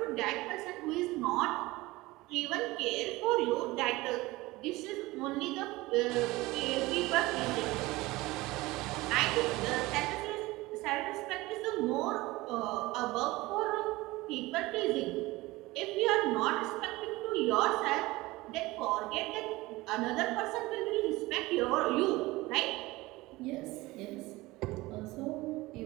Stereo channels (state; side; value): quieter; left; 20.2 dB